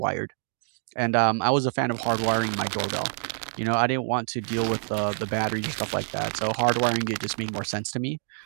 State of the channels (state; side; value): silent; left; digital silence